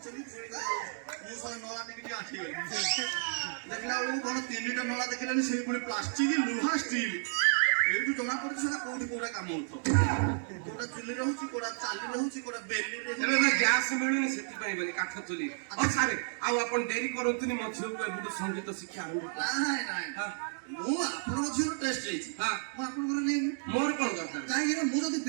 ମୁଁ ସେ ନଳା ଟିକେ ଆଠିଗଲି ଦେଖିଲା ବେଳକୁ କଣ 3ଟା ନଳା ଦେଖିଲେନି ସେଇ ପୁଣି ପ୍ଲାଷ୍ଟିକ ଲୁହା ଷ୍ଟିଲ ଏଇଠୁ ଜଣା ପଡୁଛି ସେଟା କୋଉଠି କୋଉଟା କାମ ହଉଥିବ କୋଉଟା ଚୁଲିରେ ହଉଛି କୋଉଟା ଚାଲିରେ ହଉଛି କୋଉଟା ବେଲିରେ ଏବେ ତ ଗ୍ୟାସ ମିଳୁନି ସେଥିପାଇଁ ବୋଲି କାଠ ଚୁଲି ହଉ ସାରେ ଆଉ ଆପଣ ଡେରି କରନ୍ତୁନି ମୋ ଝିଅକୁ ଏବେଠୁ ସଙ୍ଗୀତ ଶିକ୍ଷା ଆରମ୍ଭ କର ନାଇଁ ନାଇଁ ହଁ ମୁଁ ଆପଣଙ୍କ ଝିଅର ଟେଷ୍ଟ ନେଇଛି ହଁ ମୁଁ ଆପଣଙ୍କର ନେଇନି ମୋର କଣ ଦରକାର କାହିଁକି ନା ମୁଁ ଯଦି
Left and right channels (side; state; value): left; silent; digital silence